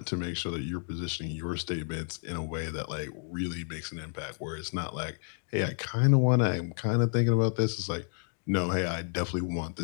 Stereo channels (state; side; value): silent; right; 57 dB below the other